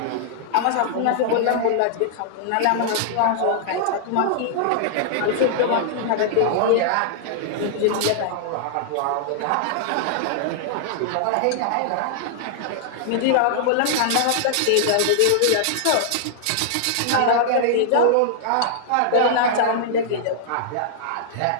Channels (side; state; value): both; different; correlation -0.01